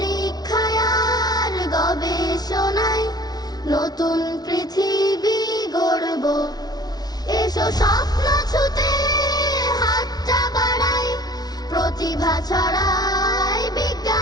আর গবেষণায় নতুন পৃথিবী গড়ব। এসো স্বপ্ন ছুতে হাতটা বাড়াই, প্রতিভা ছড়াই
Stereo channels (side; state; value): right; late; 0.19 ms